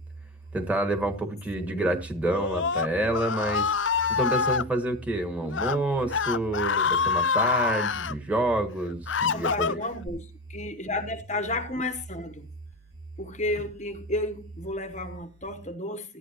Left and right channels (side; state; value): both; normal; correlation 0.22